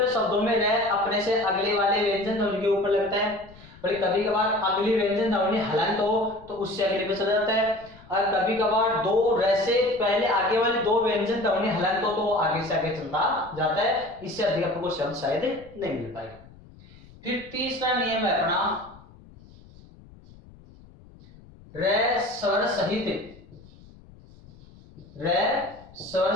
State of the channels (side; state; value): left; noise; rumble, 23 dB below the sound